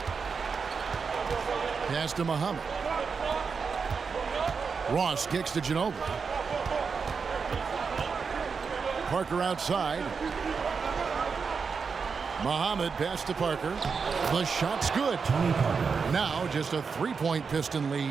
Pass to Muhammad. Ross kicks to Ginobili. Parker outside. Muhammad pass to Parker. The shot's good. Now just a 3-point Piston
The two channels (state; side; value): quieter; left; 5.4 dB